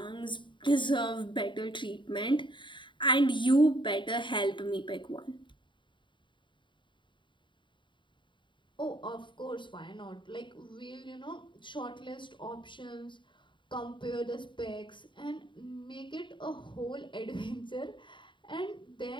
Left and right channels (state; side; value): late; right; 0.23 ms